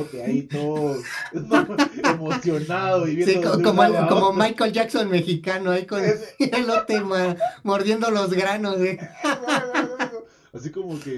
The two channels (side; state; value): both; identical; correlation 1.00